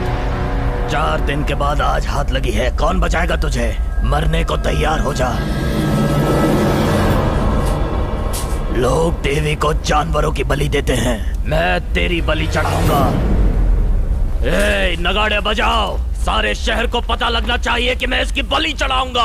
चार दिन के बाद आज हाथ लगी है, कौन बचाएगा तुझे? मरने को तैयार हो जा। लोग देवी को जानवरों की बलि देते हैं, मैं तेरी बलि चढ़ाऊंगा। ए, नगाड़े बजाओ, सारे शहर को पता लगना चाहिए कि मैं इसकी बलि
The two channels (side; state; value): both; identical; correlation 1.00